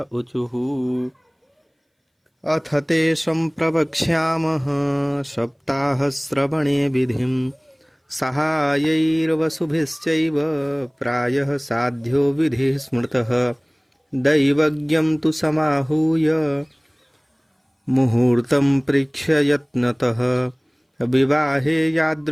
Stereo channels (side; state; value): both; identical; correlation 1.00